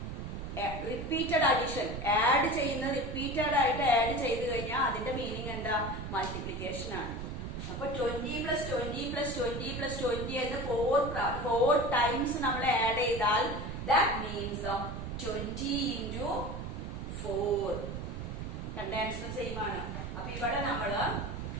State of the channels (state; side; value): noise; right; rumble, 6 dB below the sound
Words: Repeated addition add ചെയ്യുന്ന റിപ്പീറ്റഡ് ആയിട്ട് ആഡ് ചെയ്ത് കഴിഞ്ഞാൽ അതിന്റെ മീനിങ് എന്താ? മൾട്ടിപ്ലിക്കേഷൻ ആണ്. അപ്പൊ 20 + 20 + 20 + 20 എന്ന് 4 ടൈംസ് നമ്മൾ ആഡ് ചെയ്താൽ ദാറ്റ് മീൻസ് 20 × 4. രണ്ട് ആൻസറും സെയിം ആണ്. അപ്പൊ ഇവിടെ നമ്മൾ